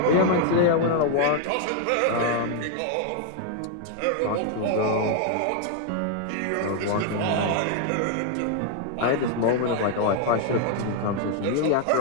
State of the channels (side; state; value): both; different; correlation 0.00